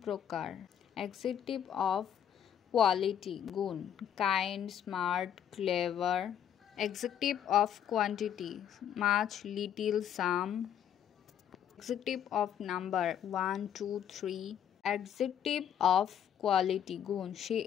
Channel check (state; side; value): quieter; right; 9.5 dB